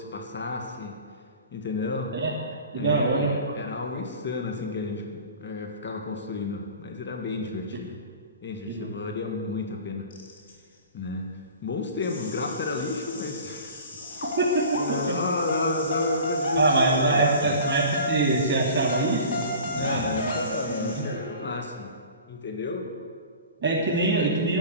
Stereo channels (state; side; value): inverted; both; correlation -0.41